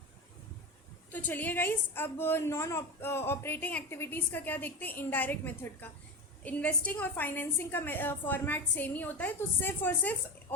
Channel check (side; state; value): both; normal; correlation 0.23